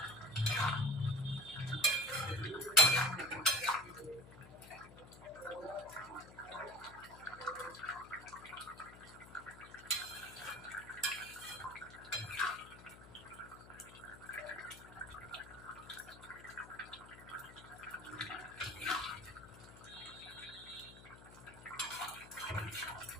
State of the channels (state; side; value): noise; left; hum, 17 dB below the sound